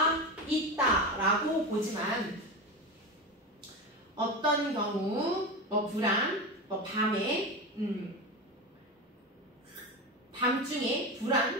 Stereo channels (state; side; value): normal; both; correlation 0.21